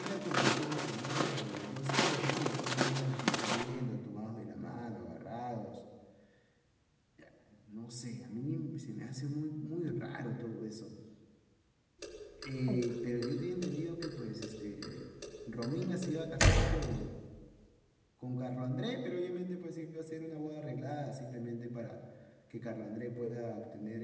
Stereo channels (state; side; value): identical; both; correlation 1.00